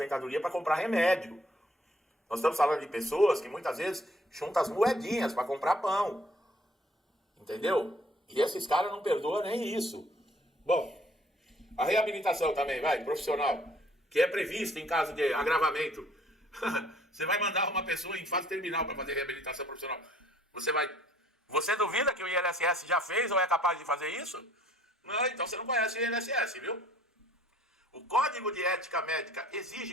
para comprar remédio. Nós estamos falando de pessoas que muitas vezes juntam as moedinhas para comprar pão. Entendeu? E esses caras não perdoam nem isso. Bom, a reabilitação também, profissional, que é prevista em caso de agravamento. Você vai mandar uma pessoa em fase terminal para fazer reabilitação profissional. Você duvida que o INSS já fez ou é capaz de fazer isso? Não, então você não conhece o INSS, viu? O Código de Ética Médica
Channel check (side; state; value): both; normal; correlation 0.59